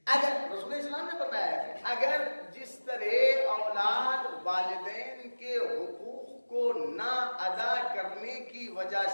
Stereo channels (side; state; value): both; inverted; correlation -1.00